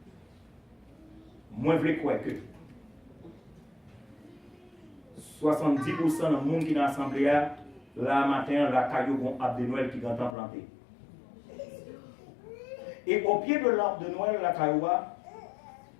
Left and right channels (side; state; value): right; drops out; at 10.4 s